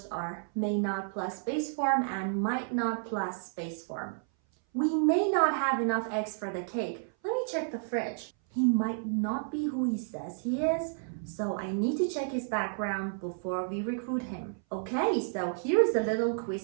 are may not plus base form and might not plus base form. We may not have enough eggs for the cake. Let me check the fridge. He might not be who he says he is, so I need to check his background before we recruit him. Okay, so here's a little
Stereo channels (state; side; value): silent; left; 57 dB below the other